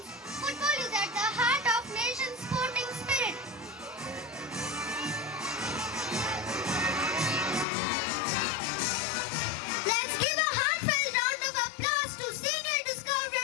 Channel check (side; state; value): right; drops out; at 7.7 s